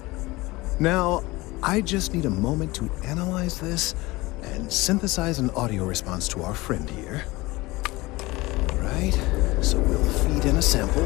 Now, I just need a moment to analyze this and synthesize an audio response to our friend here. Right, so we'll feed in a sample.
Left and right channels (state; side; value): quieter; right; 21.2 dB